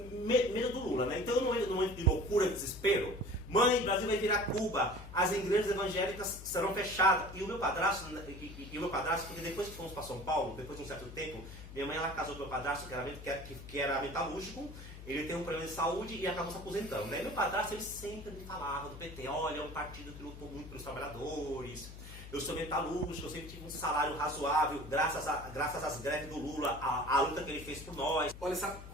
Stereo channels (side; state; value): left; noise; hum, 13 dB below the sound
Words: medo do Lula, né? Então, no momento de loucura, de desespero, mãe, o Brasil vai virar Cuba, as igrejas evangélicas serão fechadas. E o meu padrasto, porque depois que fomos para São Paulo, depois de um certo tempo, minha mãe ela casou com o meu padrasto, que era metalúrgico, ele tem um problema de saúde e acabou se aposentando. Né? E meu padrasto, ele sempre me falava do PT, olha, é um partido que lutou muito pelos trabalhadores. Eu sou metalúrgico, eu sempre tive um salário razoável, graças às greves do Lula, a luta que ele fez por nós. Olha, sabe